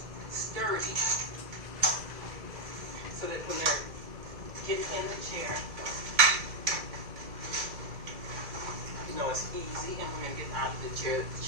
sturdy so that when they're getting in the chair, you know it's easy, and when they're getting out of the chair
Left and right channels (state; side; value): late; left; 2.3 ms